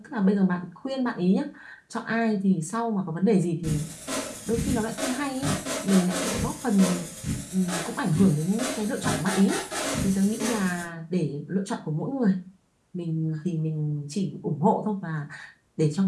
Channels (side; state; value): both; identical; correlation 1.00